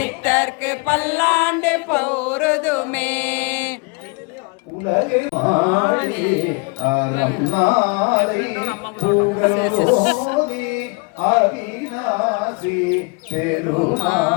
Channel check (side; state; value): right; quieter; 30.9 dB